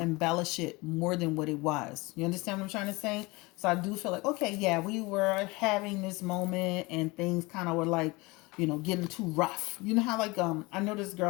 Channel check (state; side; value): quieter; right; 24.1 dB